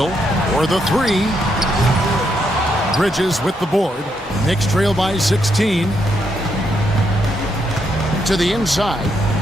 for the 3. Bridges with the board. Knicks trail by 16. To the inside.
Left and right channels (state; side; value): normal; both; correlation 0.78